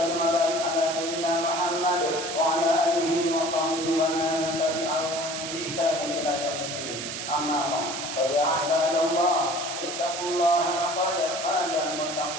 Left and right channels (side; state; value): right; noise; hiss, 6 dB below the sound